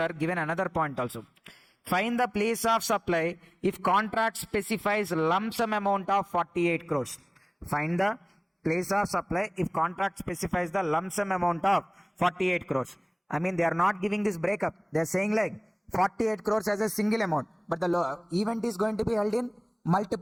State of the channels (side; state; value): both; identical; correlation 1.00